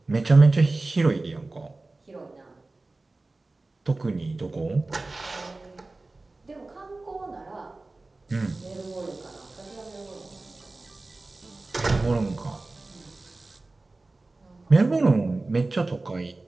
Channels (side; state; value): left; quieter; 3.2 dB